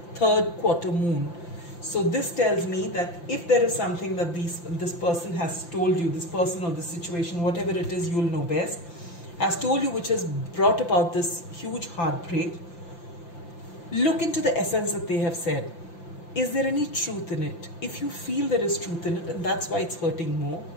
3rd quarter moon. So this tells me that if there is something that this person has told you, this person or this situation, whatever it is, you'll know best, has told you, which has brought about this huge heartbreak, look into the essence that they have said. Is there any truth in it? If you feel there is truth in it and that's why it's hurting more,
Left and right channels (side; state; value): right; late; 5.8 ms